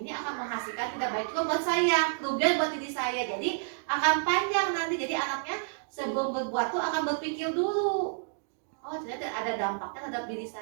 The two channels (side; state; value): left; silent; digital silence